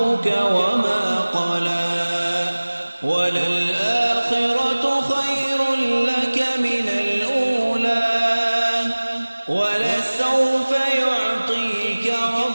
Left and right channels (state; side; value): inverted; both; correlation -1.00